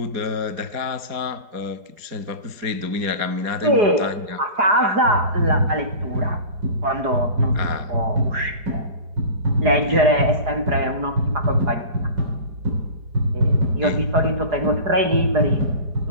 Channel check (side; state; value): left; late; 4.8 ms